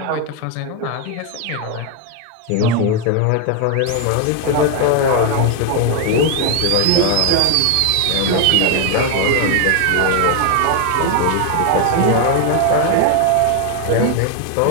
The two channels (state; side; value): different; both; correlation 0.01